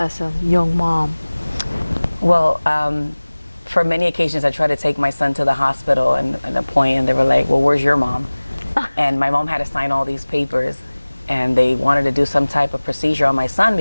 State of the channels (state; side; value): inverted; both; correlation -1.00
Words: a young mom? Well, for many occasions, I tried to take my son to the hospital and a point, and they were like, well, where's your mom? And my mom had to sign all these papers, and they wanted to do some type of procedure on my son